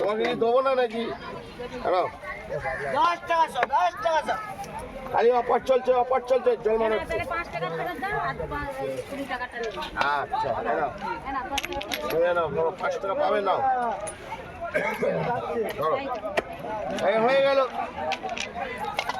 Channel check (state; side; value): identical; both; correlation 1.00